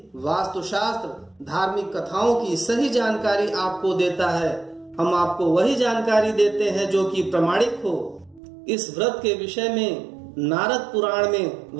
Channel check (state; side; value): drops out; left; at 8.4 s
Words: वास्तुशास्त्र, धार्मिक कथाओं की सही जानकारी आपको देता है। हम आपको वही जानकारी देते हैं जो कि प्रमाणिक हो। इस व्रत के विषय में नारद पुराण में